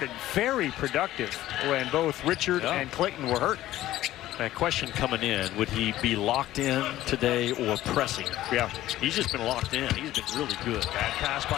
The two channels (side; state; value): right; quieter; 14.7 dB